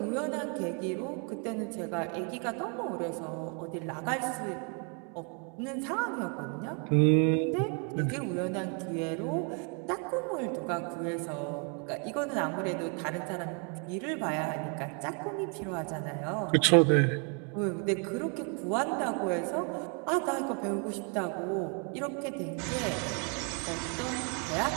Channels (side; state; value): left; quieter; 37.7 dB